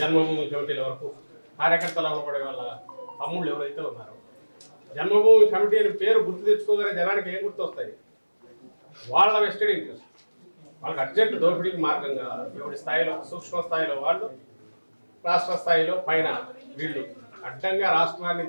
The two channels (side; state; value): both; inverted; correlation -1.00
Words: కమిటీల వరకు కార్యకర్తలు అవ్వబడే వాళ్ళ తమ్ముళ్ళు ఎవరైతే ఉన్నారో, జన్మభూమి కమిటీ అని పేరు గుర్తు తెచ్చుకోగానే జనానికి ఏం గుర్తు వస్తాయి? వాళ్ళ వెస్టెడ్ ఇంట్రెస్ట్, వాళ్ళకి అర్జెంట్ దోపిడీకి మార్గంగా ఎవరి స్థాయిలో, సూక్ష్మ స్థాయిలో వాళ్ళు, రాష్ట్ర స్థాయిలో పైన వీళ్ళు అడ్డంగా రాష్ట్రాన్ని